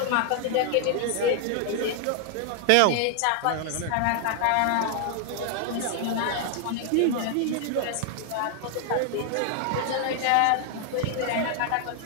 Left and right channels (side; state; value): both; different; correlation 0.00